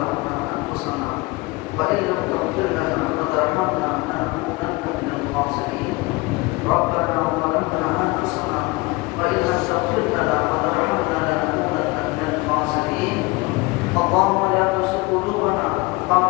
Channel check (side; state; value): right; quieter; 23.3 dB